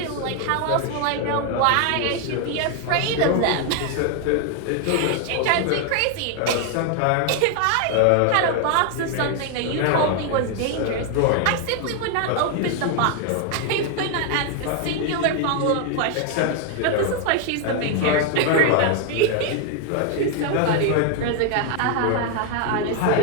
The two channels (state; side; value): different; both; correlation 0.00